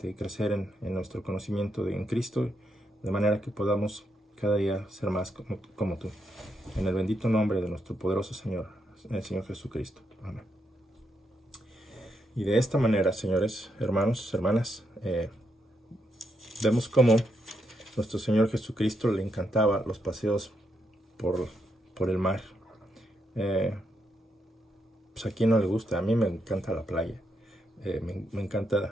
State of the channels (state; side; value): normal; both; correlation 0.80